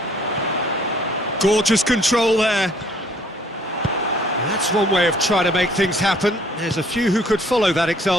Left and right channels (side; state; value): both; normal; correlation 0.60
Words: Gorgeous control there. That's one way of trying to make things happen. There's a few who could follow that